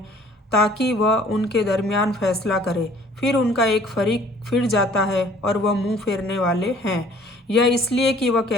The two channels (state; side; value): normal; both; correlation 0.54